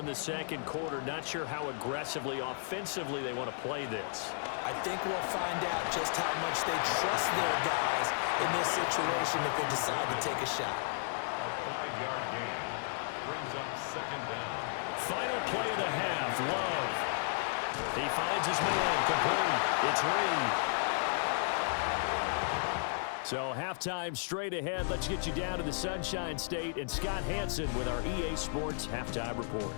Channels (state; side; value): silent; right; digital silence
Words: the second quarter, not sure how aggressively, offensively they want to play this. I think we'll find out just how much they trust their guys in this situation if they decide to take a shot. A 5-yard gain brings up 2nd down. Final play of the half, Love. He finds his man, complete. It's Reed. So halftime straight ahead. Let's get you down to the Sunshine State and Scott Hansen with our EA Sports Halftime Report.